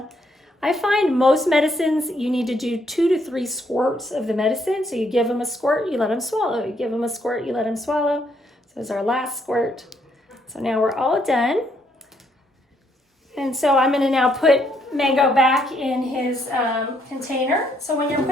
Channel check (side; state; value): both; normal; correlation 0.72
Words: I find most medicines, you need to do 2 to 3 squirts of the medicine. So you give them a squirt, you let them swallow. You give them a squirt, you let them swallow. So this is our last squirt. So now we're all done. And so I'm going to now put Mango back in his container. So when you're